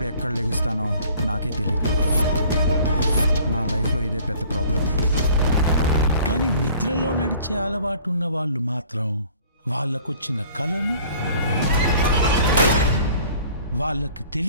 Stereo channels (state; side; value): inverted; both; correlation -0.52